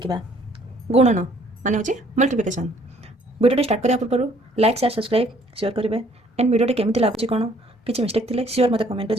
गुणन माने होची मल्टीप्लिकेशन। वीडियो स्टार्ट करिया पूर्व लाइक शेयर सब्सक्राइब शेयर करेंगे एंड वीडियो केमती लगुच कौन किसी मिस्टेक थी सियोर मत कमेंट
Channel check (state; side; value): normal; both; correlation 0.61